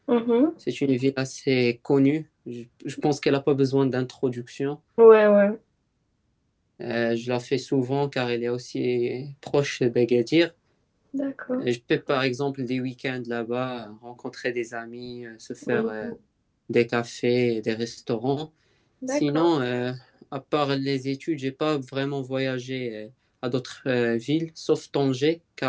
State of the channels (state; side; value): identical; both; correlation 1.00